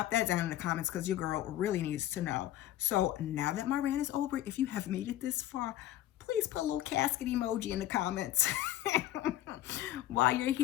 that down in the comments, because your girl really needs to know. So now that my rant is over, if you have made it this far, please put a little casket emoji in the comments. While you're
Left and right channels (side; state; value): right; quieter; 13.6 dB